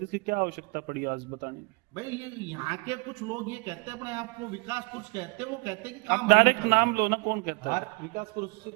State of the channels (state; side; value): quieter; left; 29.6 dB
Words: इसकी क्या आवश्यकता पड़ी आज बताने की? भाई ये यहाँ के कुछ लोग ये कहते हैं अपने आप को विकास कुछ कहते हैं, वो कहते हैं कि काम आप डायरेक्ट नाम लो ना, कौन कहता है? हर विकास पुरुष